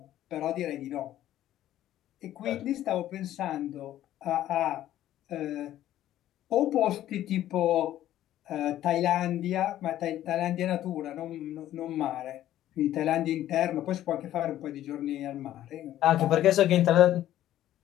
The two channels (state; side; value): quieter; right; 12.9 dB